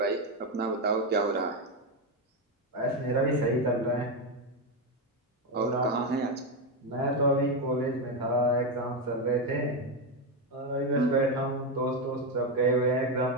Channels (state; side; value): normal; both; correlation 0.09